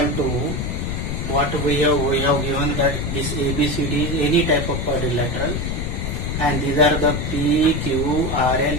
what we have given that this ABCD is any type of quadrilateral, and these are the P, Q, R and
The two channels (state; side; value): noise; left; rumble, 2 dB below the sound